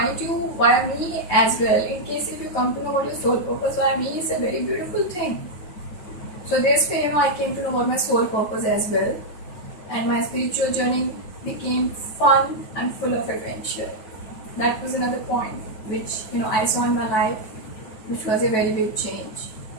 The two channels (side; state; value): right; late; 9.3 ms